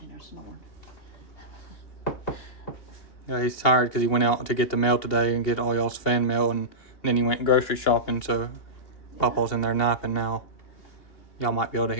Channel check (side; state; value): right; late; 2.8 ms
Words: in there snoring. Yeah, he's tired because he went out to get the mail today and get all y'all's fan mail, and then he went grocery shopping, so Papa's in there napping now. Y'all might be able to